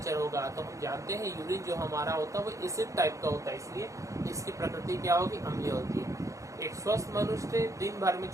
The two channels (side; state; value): left; late; 0.15 ms